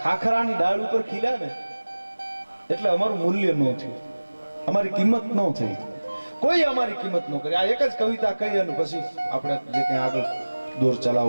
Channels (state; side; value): inverted; both; correlation -1.00